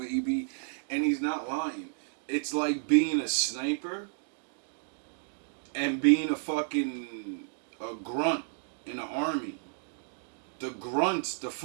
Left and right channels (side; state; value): left; silent; digital silence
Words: And he's not lying. It's like being a sniper and being a grunt in the army. The grunts, the